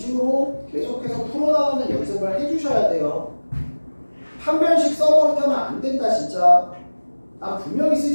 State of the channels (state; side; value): inverted; both; correlation -1.00